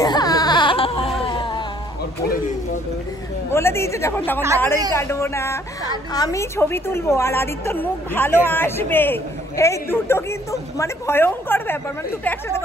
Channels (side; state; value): both; normal; correlation 0.62